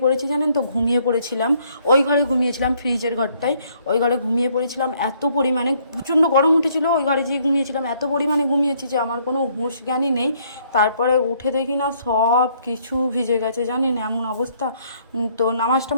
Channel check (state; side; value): inverted; both; correlation -0.66